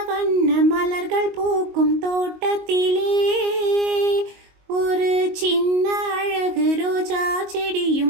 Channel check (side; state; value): left; late; 22 ms